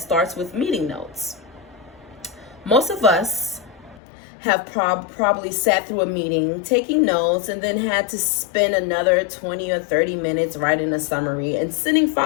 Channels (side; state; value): right; drops out; at 4.0 s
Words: with meeting notes. Most of us have probably sat through a meeting, taking notes, and then had to spend another 20 or 30 minutes writing a summary and sending